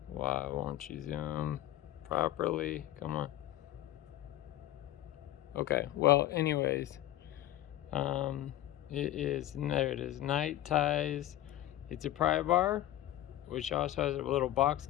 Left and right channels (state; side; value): quieter; right; 13.9 dB